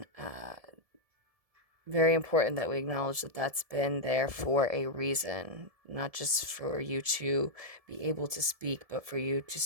very important that we acknowledge that that's been there for a reason, not just for you to be able to speak, but for you to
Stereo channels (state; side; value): late; left; 1.7 ms